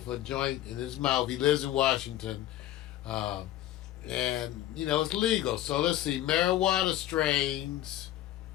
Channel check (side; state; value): right; quieter; 13.5 dB